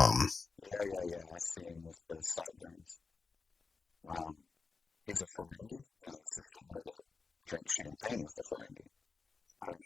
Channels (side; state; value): right; quieter; 4.5 dB